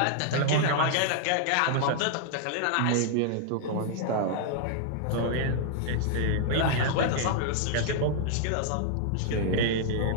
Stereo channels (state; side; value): different; both; correlation -0.01